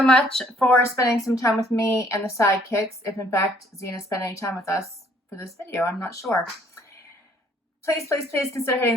much for spending some time with me and the sidekicks. If in fact Zena spent any time with us for this video, I'm not sure. Please consider hitting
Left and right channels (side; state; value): both; normal; correlation 0.62